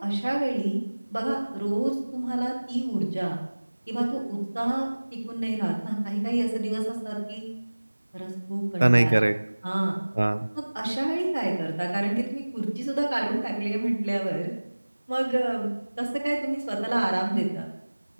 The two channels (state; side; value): inverted; both; correlation -1.00